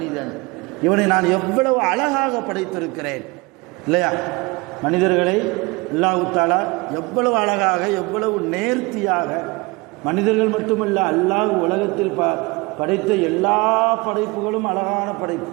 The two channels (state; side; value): quieter; left; 25.2 dB